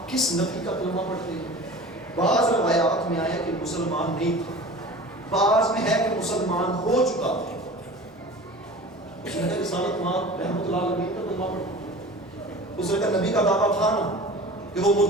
کس نبی کا کلمہ پڑھتے ہیں؟ بعض روایات میں آیا کہ مسلمان نہیں تھا، بعض میں ہے کہ مسلمان ہو چکا تھا۔ اس نے کہا رسالت مآب رحمۃ اللہ علیہ کا کلمہ پڑھتے؟ اس نے کہا نبی کا دعویٰ تھا نا کہ وہ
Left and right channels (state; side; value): normal; both; correlation 0.39